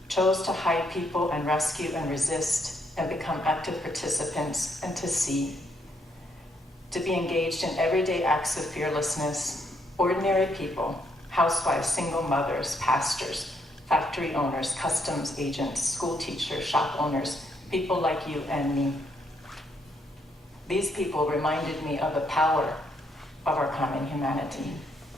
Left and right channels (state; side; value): normal; both; correlation 0.74